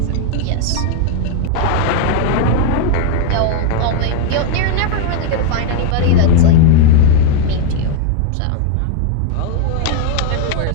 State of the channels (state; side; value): different; both; correlation 0.01